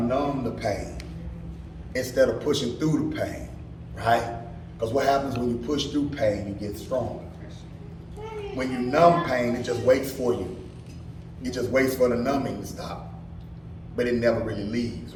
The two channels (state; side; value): identical; both; correlation 1.00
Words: numb the pain instead of pushing through the pain, right? Because what happens when you push through pain, you get stronger. When you numb pain, it just waits for you. It just waits for the numbing to stop. But it never really leaves,